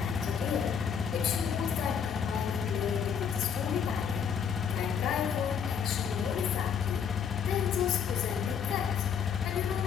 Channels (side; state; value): right; quieter; 7.3 dB